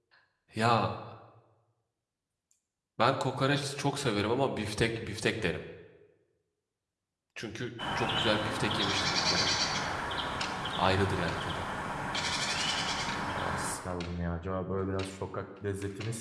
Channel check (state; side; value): identical; both; correlation 1.00